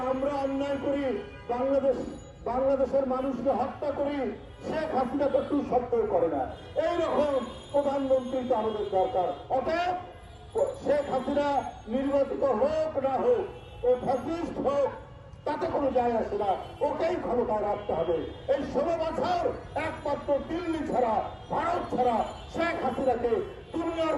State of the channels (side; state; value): both; identical; correlation 1.00